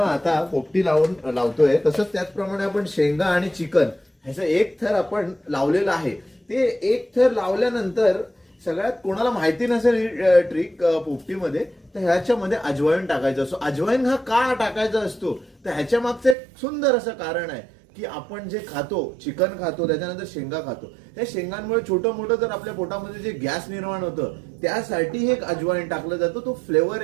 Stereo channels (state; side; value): drops out; left; at 16.4 s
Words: पोपटी लावतोय तसंच त्याचप्रमाणे आपण शेंगा आणि चिकन ह्याचा एक थर आपण लावलेला आहे. ते एक थर लावल्यानंतर सगळ्यात कोणाला माहिती नसेल ट्रिक पोपटीमध्ये तर ह्याच्यामध्ये अजवाईन टाकायचं असतो. अजवाईन हा का टाकायचा असतो तर ह्याच्या मागचं एक सुंदर असं कारण आहे की आपण जे खातो चिकन खातो त्याच्यानंतर शेंगा खातो, त्या शेंगांमुळे छोटं मोठं जर आपल्या पोटामध्ये जे गॅस निर्माण होतं त्यासाठी हे अजवाईन टाकलं जातं. तो फ्लेवर